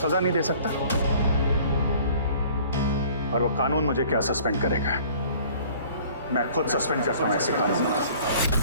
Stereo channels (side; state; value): both; inverted; correlation -0.52